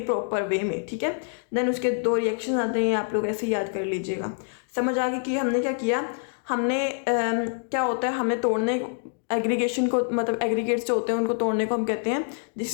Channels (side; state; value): right; silent; digital silence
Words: प्रॉपर वे में, ठीक है। देन उसके 2 रिएक्शन आते हैं, आप लोग ऐसे याद कर लीजिएगा। समझ आ गई कि हमने क्या किया, हमने क्या होता है, हमें तोड़ने एग्रीगेशन को, मतलब एग्रीगेट्स जो होते हैं उनको तोड़ने को हम कहते हैं